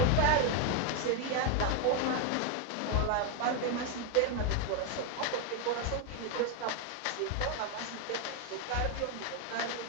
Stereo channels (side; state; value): both; different; correlation 0.01